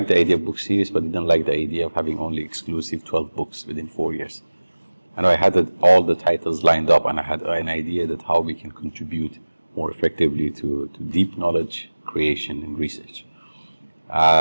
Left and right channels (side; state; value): both; inverted; correlation -1.00